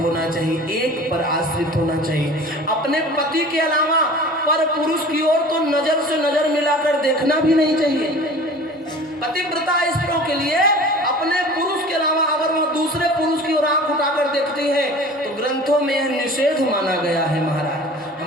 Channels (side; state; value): both; normal; correlation 0.42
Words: चाहिए, एक पर आश्रित होना चाहिए। अपने पति के अलावा पर पुरुष की ओर तो नजर से नजर मिलाकर देखना भी नहीं चाहिए। पतिव्रता स्त्रियों के लिए अपने पुरुष के अलावा अगर वो दूसरे पुरुष की ओर आंख उठाकर देखती है तो ग्रंथों में यह निषेध माना गया है। महाराज